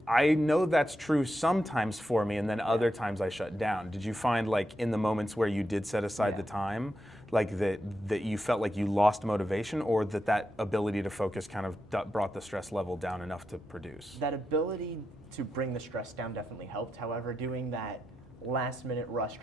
know that's true sometimes for me, and then other times I shut down. Did you find like in the moments where you did set aside the time, like that you felt like you lost motivation, or that ability to focus kind of brought the stress level down enough to produce? That ability to bring the stress down definitely helped. However, doing that last minute rush,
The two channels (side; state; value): both; normal; correlation 0.86